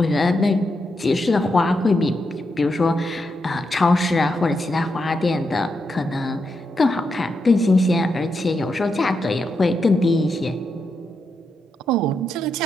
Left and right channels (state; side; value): normal; both; correlation 0.84